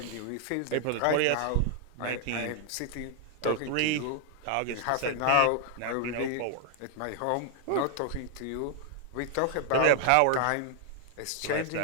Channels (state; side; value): different; both; correlation 0.00